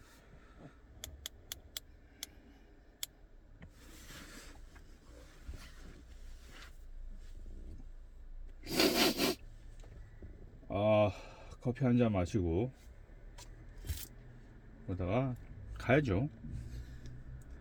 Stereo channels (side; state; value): both; identical; correlation 1.00